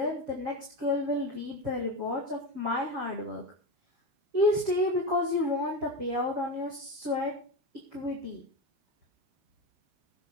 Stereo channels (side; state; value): left; late; 7.3 ms